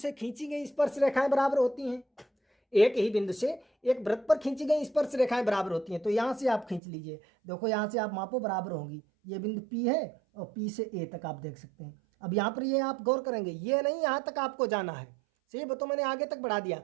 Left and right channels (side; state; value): left; drops out; at 6.8 s